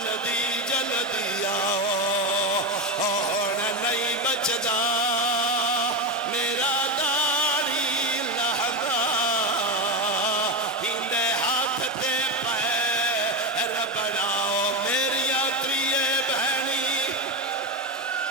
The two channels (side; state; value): both; normal; correlation 0.14